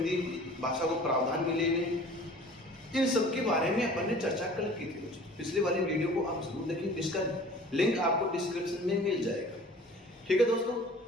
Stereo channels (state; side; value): normal; both; correlation 0.46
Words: भाषा को प्रावधान मिले हुए, इन सब के बारे में अपन ने चर्चा कल की थी। दोस्तों, पिछले वाली वीडियो को आप जरूर देखें, इसका लिंक आपको डिस्क्रिप्शन में मिल जाएगा। ठीक है दोस्तों,